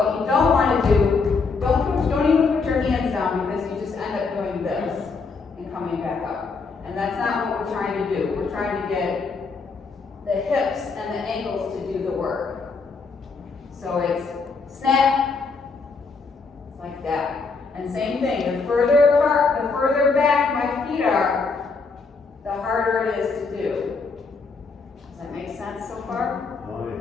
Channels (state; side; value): quieter; right; 4.6 dB